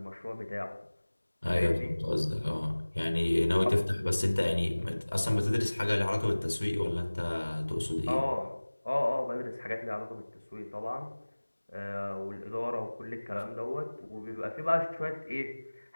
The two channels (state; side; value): inverted; both; correlation -1.00